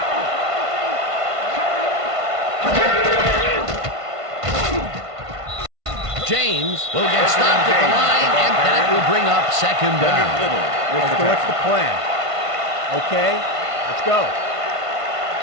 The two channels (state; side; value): late; left; 1.5 ms